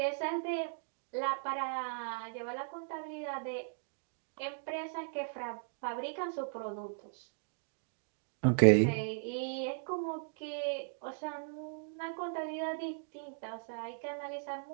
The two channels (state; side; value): silent; left; digital silence